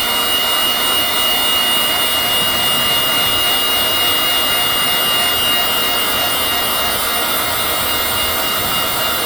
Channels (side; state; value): right; noise; rumble, 20 dB below the sound